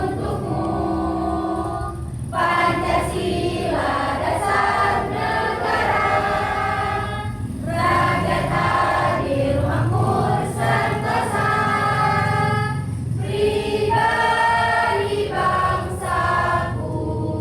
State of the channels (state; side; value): identical; both; correlation 1.00